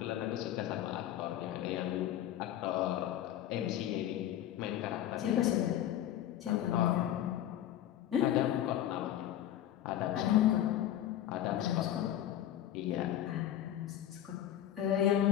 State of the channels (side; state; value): right; quieter; 11.9 dB